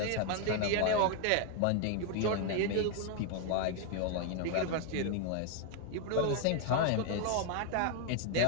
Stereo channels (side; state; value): both; different; correlation 0.00